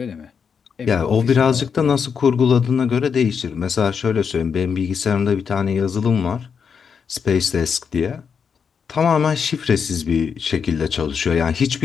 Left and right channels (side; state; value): right; quieter; 6.5 dB